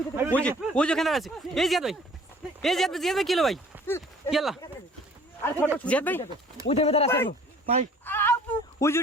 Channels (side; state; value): both; normal; correlation 0.52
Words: ওই যে ওখানে দাঁড়া আছে। এই জিয়াদ ভাই, এই জিয়াদ ভাই কি হলো ভাই? কি আল্লাহ জিয়াদ ভাই, ওই দেবে দাঁড়া আছে ভাই। ওই যে